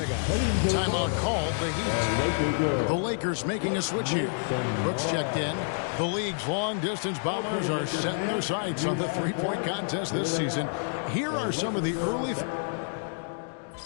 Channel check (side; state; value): right; silent; digital silence